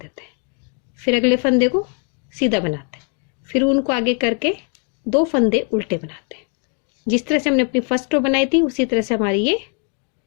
हैं, फिर अगले फंदे को सीधा बनाते हैं, फिर उनको आगे करके 2 फंदे उल्टे बनाते हैं। जिस तरह से हमने अपनी फर्स्ट रो बनाई थी उसी तरह से हमारी ये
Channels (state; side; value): quieter; right; 39.8 dB